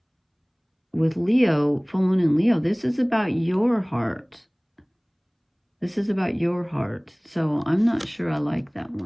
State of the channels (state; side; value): identical; both; correlation 1.00